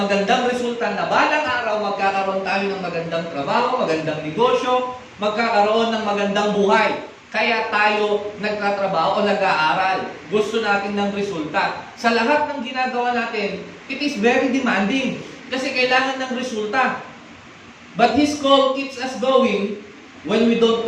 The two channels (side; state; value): both; identical; correlation 1.00